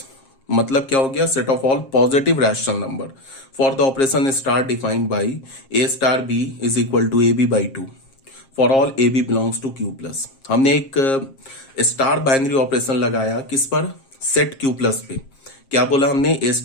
मतलब क्या हो गया, set of all positive rational number for the operation star defined by A star B is equal to AB/2 for all AB belongs to Q plus. हमने एक star binary operation लगाया किस पर, set Q plus पे। क्या बोला हमने, ए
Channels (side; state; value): right; late; 7.5 ms